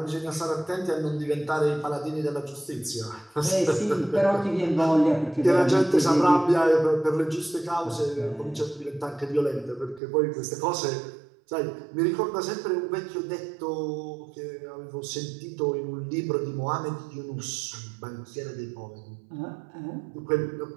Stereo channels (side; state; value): left; drops out; at 10.0 s